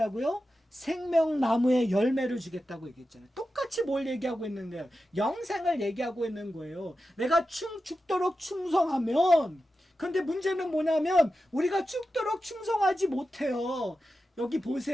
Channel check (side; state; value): both; normal; correlation 0.91